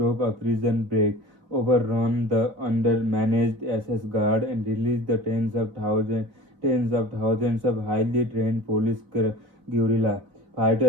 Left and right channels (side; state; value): left; late; 4.0 ms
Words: a prison break, overrun the undermanaged SS guard, and release the tens of thousands of highly trained police guerrilla